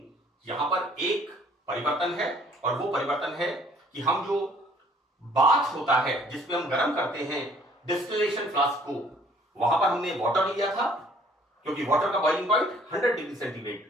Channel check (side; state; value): both; normal; correlation 0.59